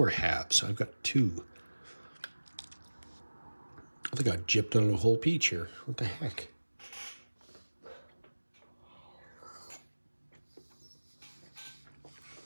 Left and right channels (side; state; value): both; inverted; correlation -1.00